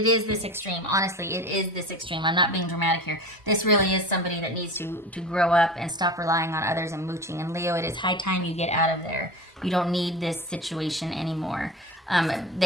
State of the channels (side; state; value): both; normal; correlation 0.32